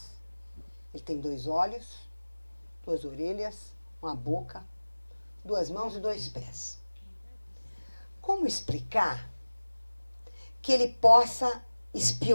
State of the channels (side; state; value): both; inverted; correlation -1.00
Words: Ele tem 2 olhos, 2 orelhas, uma boca, 2 mãos e 2 pés. Como explicar que ele possa